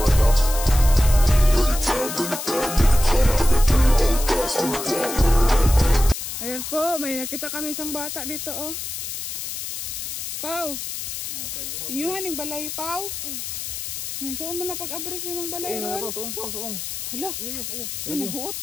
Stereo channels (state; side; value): noise; left; hiss, 6 dB below the sound